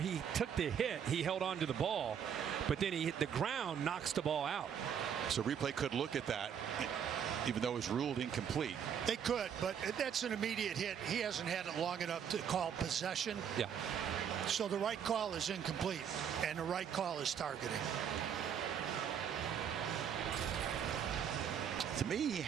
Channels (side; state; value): left; quieter; 8.2 dB